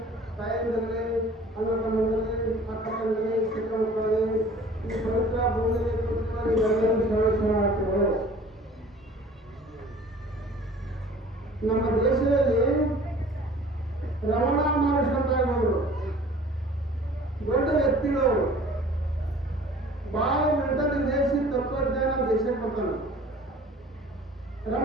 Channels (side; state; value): both; normal; correlation 0.48